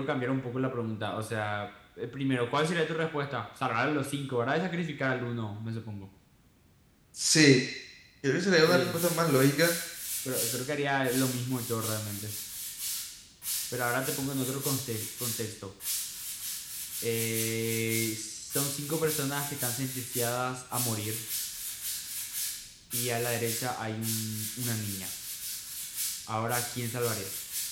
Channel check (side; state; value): both; identical; correlation 1.00